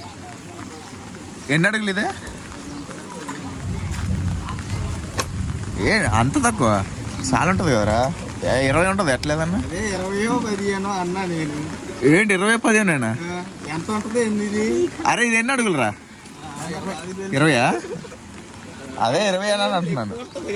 ఎన్ని అడుగులు ఇదే ఏ అంత తక్కువ చాలా ఉంటుంది కదరా 20 ఉంటుంది ఎట్లేదన్నా 20-15 అన్నా నేను ఏంటి 20-15 ఎంత ఉంటుంది ఇది అరే ఇది ఎన్ని అడుగులరా 20 అదే 20 అని అంటున్నాను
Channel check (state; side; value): identical; both; correlation 1.00